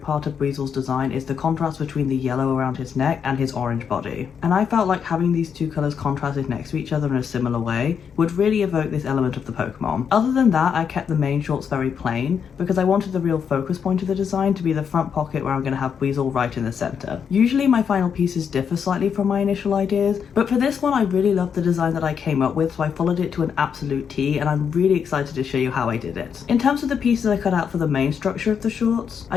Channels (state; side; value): quieter; right; 7.1 dB